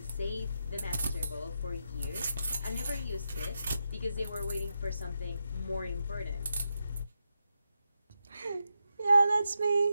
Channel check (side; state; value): both; inverted; correlation -0.86